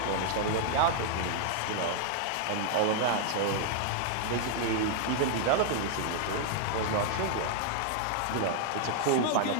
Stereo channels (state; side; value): different; both; correlation 0.00